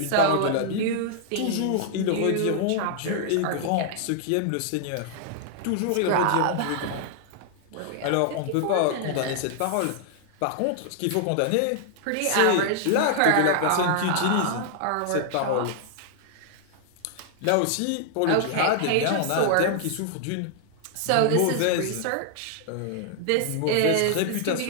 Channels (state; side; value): different; both; correlation -0.01